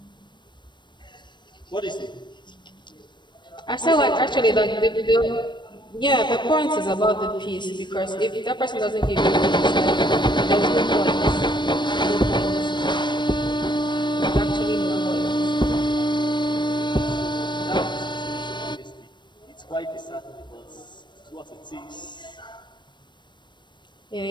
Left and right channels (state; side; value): late; right; 0.22 ms